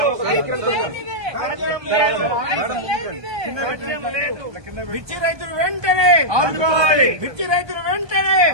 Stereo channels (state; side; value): late; left; 1.2 ms